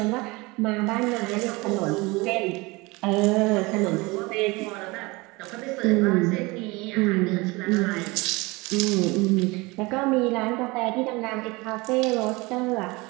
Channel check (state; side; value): quieter; left; 24.1 dB